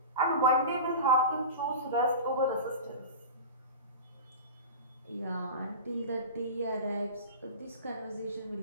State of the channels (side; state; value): both; inverted; correlation -0.30